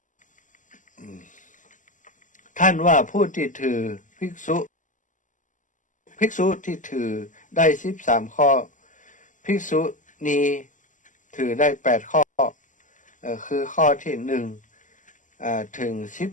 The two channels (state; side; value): late; right; 0.37 ms